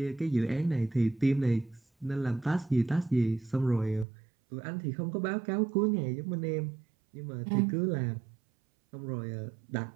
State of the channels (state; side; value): drops out; left; at 4.0 s